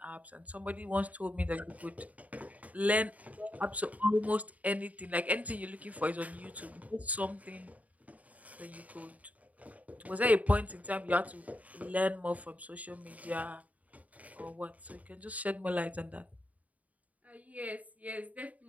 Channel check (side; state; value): left; late; 0.071 ms